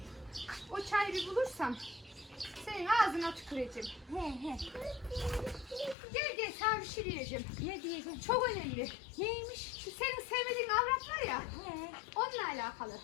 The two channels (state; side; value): drops out; right; at 6.0 s